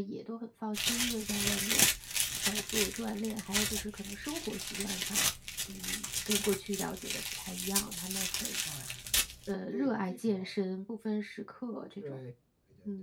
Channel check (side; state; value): both; identical; correlation 1.00